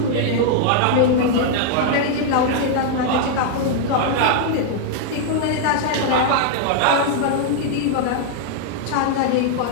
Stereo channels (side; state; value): both; different; correlation -0.01